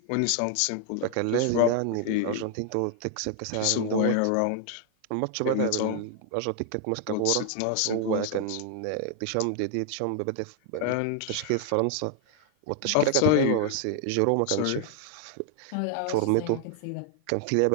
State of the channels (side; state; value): both; different; correlation 0.00